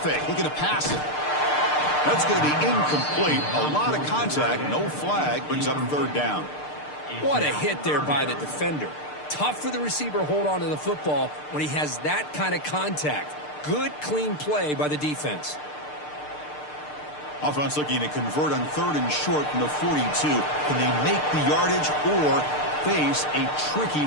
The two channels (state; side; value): late; right; 6.7 ms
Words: looking to pass it. That's going to be incomplete. A lot of contact, no flag, brings up third down. What a hit there by the defender. Tough for the receiver to hold on to the football when he has that kind of contact. Good, clean play by the defense. Offense looking to convert on 3rd and short from the 42. Can they make the yardage or face a tricky